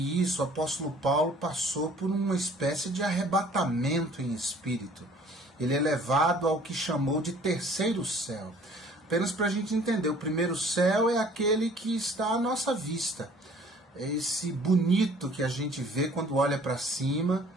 isso, o apóstolo Paulo passou por uma espécie de arrebatamento em espírito. Ele é levado ao que chamou de terceiro céu. Apenas para a gente entender, o primeiro céu é aquele que está à nossa vista. É esse bonito que a gente vê quando olha para cima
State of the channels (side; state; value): both; normal; correlation 0.53